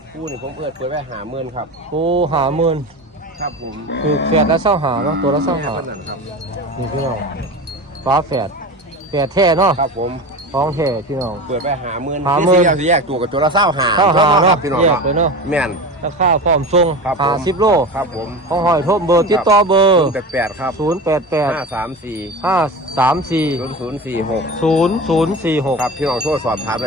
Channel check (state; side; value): normal; both; correlation 0.29